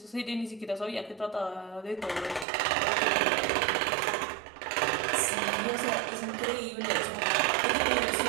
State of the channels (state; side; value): drops out; left; at 2.5 s